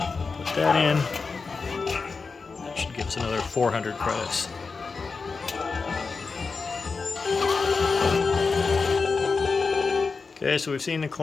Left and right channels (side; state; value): right; quieter; 4.6 dB